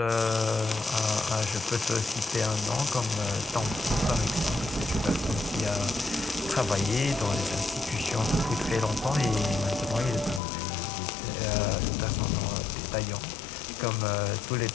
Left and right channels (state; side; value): drops out; right; at 10.4 s